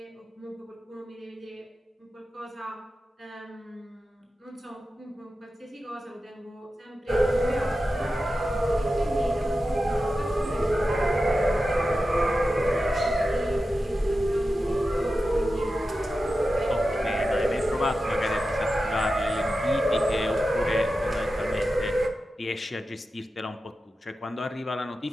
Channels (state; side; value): normal; both; correlation 0.92